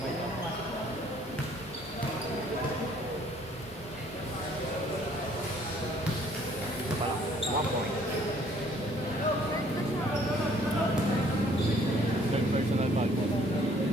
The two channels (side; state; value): both; normal; correlation 0.60